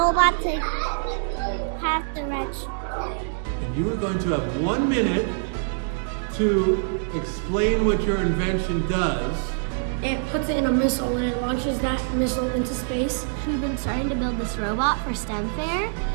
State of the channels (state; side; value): silent; left; digital silence